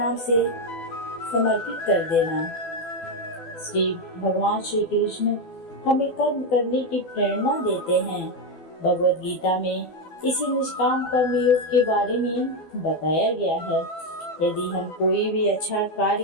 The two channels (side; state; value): right; late; 12 ms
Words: से समर्पित कर देना। भगवान श्री कृष्ण हमें कर्म करने की प्रेरणा देते हैं। भगवद गीता में इसी निष्काम कर्म योग के बारे में बताया गया है। यदि हम कोई भी अच्छा